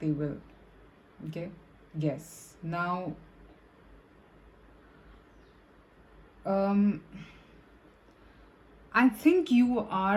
will. Okay? Yes. Now, I think you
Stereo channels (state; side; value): identical; both; correlation 1.00